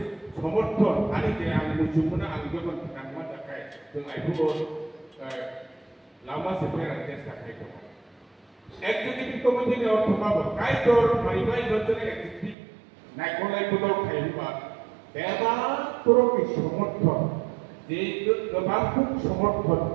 समर्थन आंनि जे आं मुजुमना आं गोबां नांमा थाखाय जों आइखौबो लामा सेफायनानै चेष्टा खालामो एक्टिभिटी कमिटिनि अर्थमाबो कायदर माइबाय बचने एक्टिभिटी नायख'लाय बदल खायोबा बेबा तरफनि समर्थन जे गोबां समर्थन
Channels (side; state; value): left; drops out; at 12.6 s